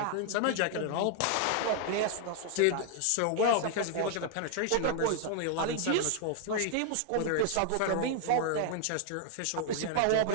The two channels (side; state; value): both; different; correlation 0.00